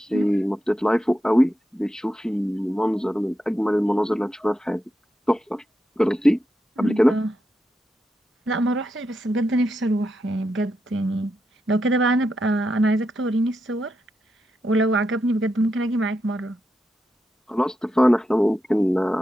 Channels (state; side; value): normal; both; correlation 0.86